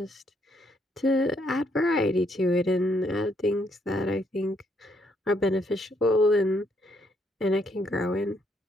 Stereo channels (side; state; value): both; normal; correlation 0.72